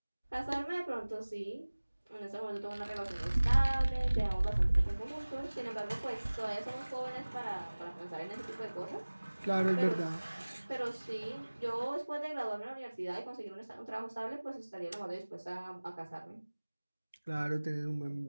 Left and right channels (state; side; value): inverted; both; correlation -1.00